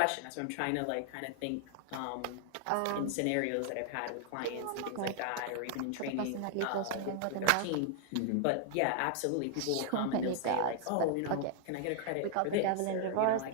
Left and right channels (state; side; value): different; both; correlation 0.00